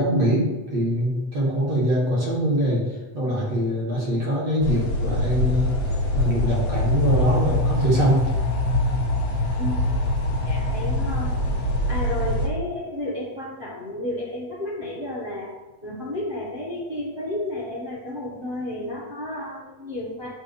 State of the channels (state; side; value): late; left; 8.1 ms